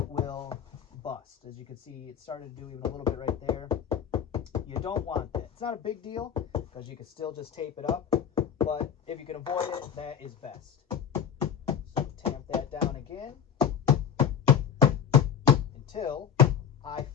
will bust. As you can see, it started to do even a little bit right there. You don't want that. It's not a big deal because you can still just tape it up, but if you can avoid it, that is best. So tamp that down again until I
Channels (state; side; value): quieter; right; 8.1 dB